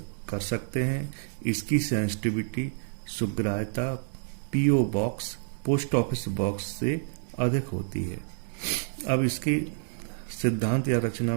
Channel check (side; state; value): left; silent; digital silence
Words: कर सकते हैं। इसकी सेंसिटिविटी सुग्राह्यता PO box, post office box से अधिक होती है। अब इसकी सिद्धांत या रचना